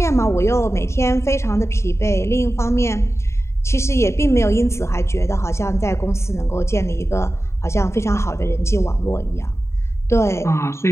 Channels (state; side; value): late; right; 0.13 ms